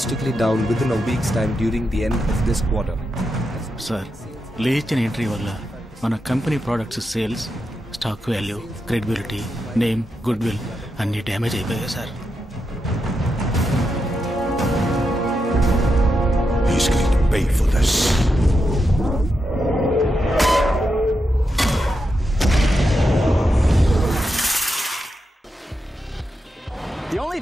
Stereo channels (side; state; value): both; normal; correlation 0.86